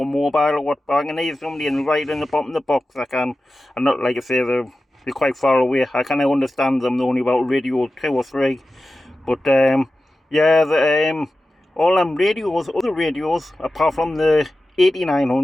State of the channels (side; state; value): both; normal; correlation 0.94